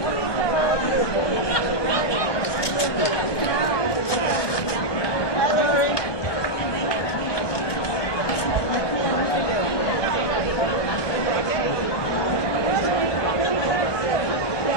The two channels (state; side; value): late; right; 1.2 ms